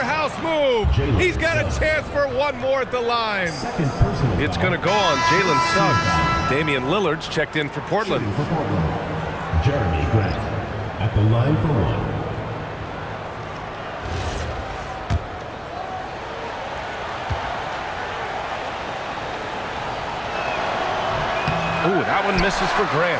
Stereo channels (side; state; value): both; identical; correlation 1.00